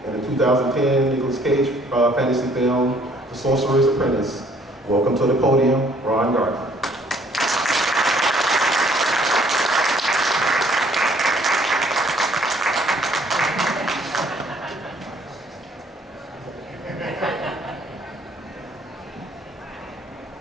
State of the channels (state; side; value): normal; both; correlation 0.61